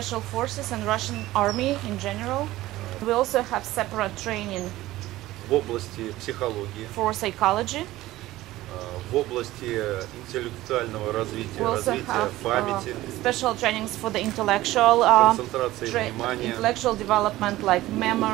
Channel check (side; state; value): left; quieter; 16.6 dB